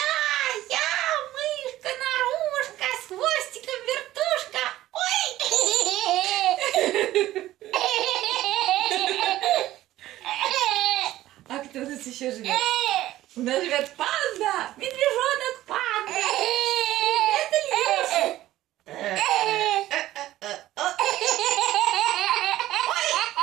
Я, мышка, нарушка, с хвостиком вертушка. Ой! А кто у нас еще живет? У нас живет панда, медвежонок панда. Это Илюша.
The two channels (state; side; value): quieter; left; 14.8 dB